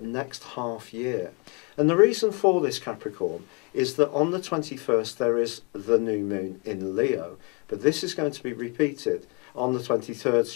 next half year. And the reason for this, Capricorn, is that on the 21st there is the new moon in Leo, but this is going to be repeated on the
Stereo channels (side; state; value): right; quieter; 30.1 dB